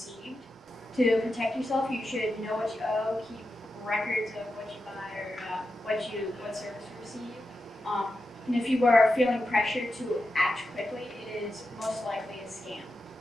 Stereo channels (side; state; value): both; normal; correlation 0.89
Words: To protect yourself, you should know what you owe, keep records of what you buy or what service you receive. And if you are feeling pressure to act quickly, it is most likely a scam.